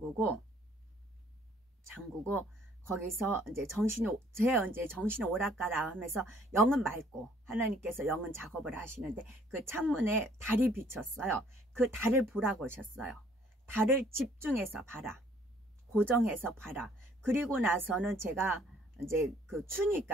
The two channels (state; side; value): normal; both; correlation 0.61